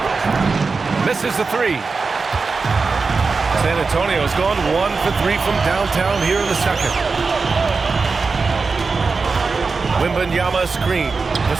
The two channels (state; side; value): quieter; left; 4.4 dB